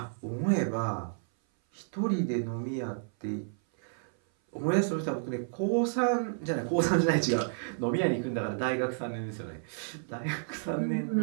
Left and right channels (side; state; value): left; silent; 56 dB below the other